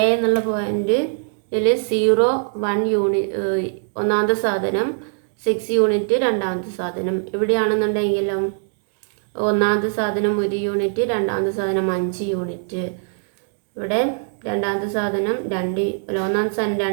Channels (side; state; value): left; silent; digital silence